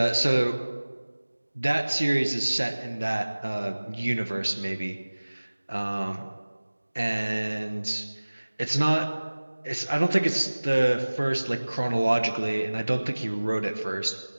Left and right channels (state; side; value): inverted; both; correlation -1.00